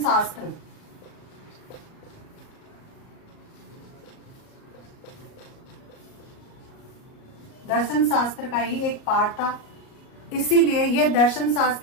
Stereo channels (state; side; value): late; right; 37 ms